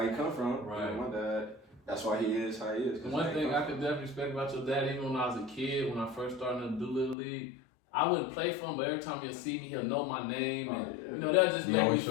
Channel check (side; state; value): right; drops out; at 7.2 s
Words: he come from. Right. You know, my dad, that's why he is how he is. One thing I could definitely respect about your dad, even when I was a kid, when I first started in the Doolittle League, I wouldn't play for him, but every time he'll see me, he'll know my name, and you know that just made me